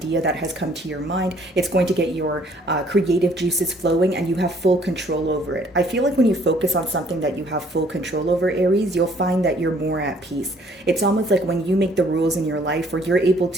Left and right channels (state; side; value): normal; both; correlation 0.61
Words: that has come to your mind. It's going to get your creative juices flowing, and you have full control over it. I feel like when you focus on something that you have full control over, Aries, you'll find that you're more at peace. It's almost like when you make the rules in your life, or you're able